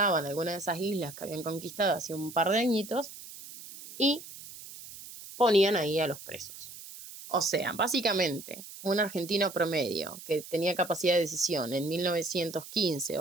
alguna de esas islas que habían conquistado hace un par de añitos y ponían ahí a los presos. O sea, básicamente, un argentino promedio que tenía capacidad de decisión en 1915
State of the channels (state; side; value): noise; right; hiss, 14 dB below the sound